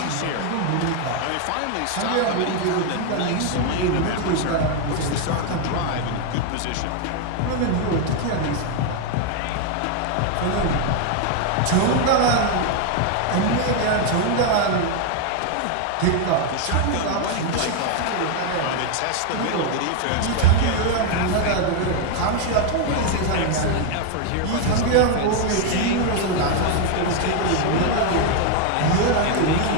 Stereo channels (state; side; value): different; both; correlation 0.01